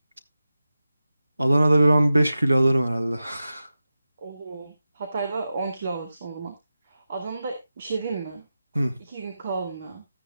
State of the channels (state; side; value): inverted; both; correlation -0.92